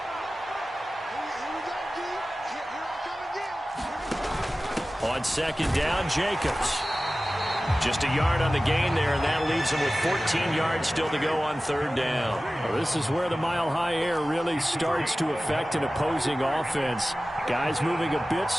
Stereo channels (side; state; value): both; normal; correlation 0.96